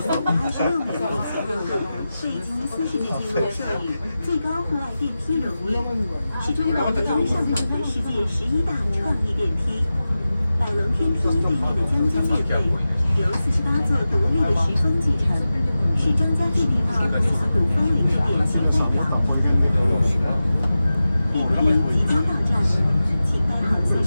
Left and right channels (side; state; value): both; inverted; correlation -0.94